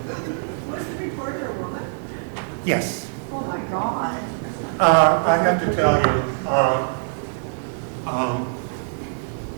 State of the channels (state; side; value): silent; left; digital silence